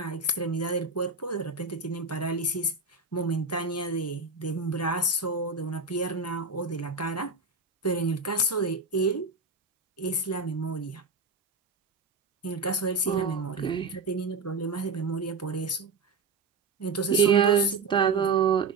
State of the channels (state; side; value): quieter; left; 3.9 dB